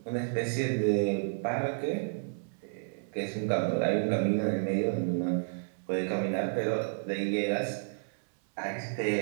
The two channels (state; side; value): silent; left; 57 dB below the other